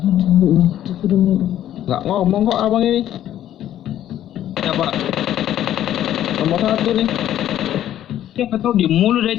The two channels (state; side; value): quieter; right; 11.9 dB